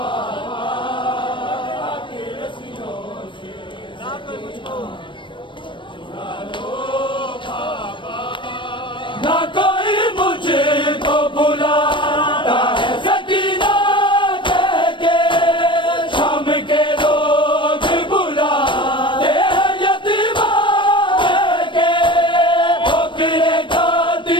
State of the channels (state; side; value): late; right; 0.24 ms